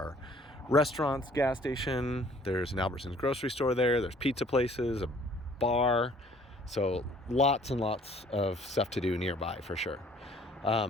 restaurants, gas station, there's an Albertsons grocery store there's pizza places, a bar, so lots and lots of stuff to do nearby for sure.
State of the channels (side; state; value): both; normal; correlation 0.57